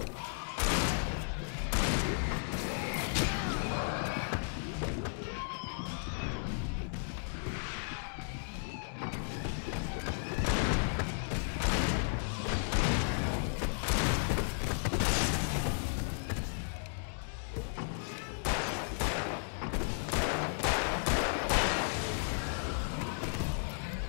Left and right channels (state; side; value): silent; right; digital silence